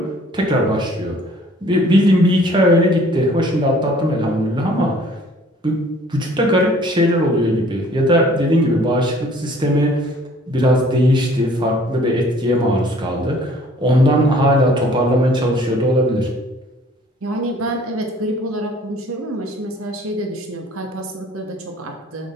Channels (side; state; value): both; normal; correlation 0.55